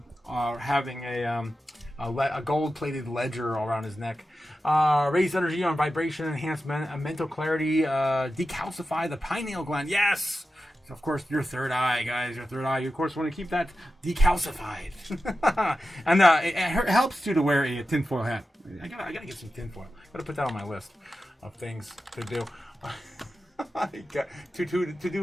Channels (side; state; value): both; normal; correlation 0.92